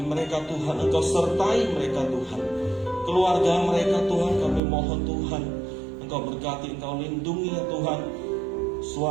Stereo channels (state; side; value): drops out; left; at 4.6 s